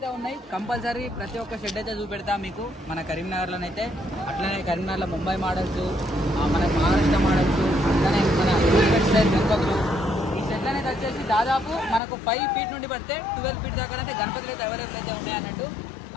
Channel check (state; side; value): drops out; right; at 12.0 s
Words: ఉన్నాయి. కంపల్సరీ ప్రతి ఒక్క షెడ్ అయితే చూపెడతాం మీకు మన కరీంనగర్లోనైతే. అట్లనే కరీంనగర్లో ముంబై మోడల్స్, మన మహారాష్ట్ర మోడల్స్, అట్లనే మన స్టైల్ గణపతులు. ఈ షెడ్ అనేది వచ్చేసి దాదాపు మనకు 5 feet నుండి పడితే 12 feet దాకా అయితే గణపతులు అయితే అవైలబుల్ అయితే ఉన్నాయి అన్నట్టు.